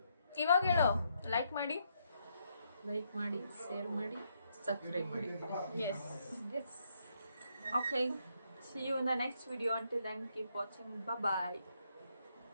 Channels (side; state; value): both; inverted; correlation -0.76